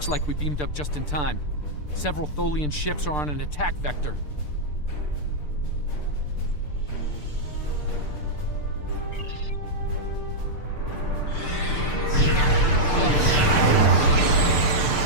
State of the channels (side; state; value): right; late; 6.7 ms